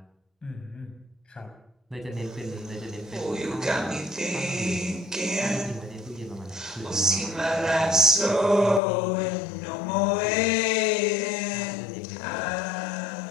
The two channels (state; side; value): drops out; right; at 8.8 s